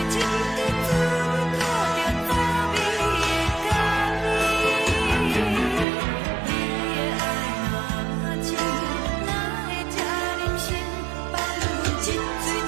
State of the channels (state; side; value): drops out; left; at 5.9 s